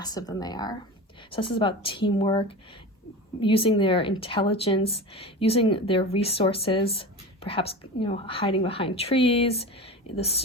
than they are. So this is about teamwork, using their intelligence, using their resources, perhaps hiding behind trees, the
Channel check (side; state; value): both; normal; correlation 0.29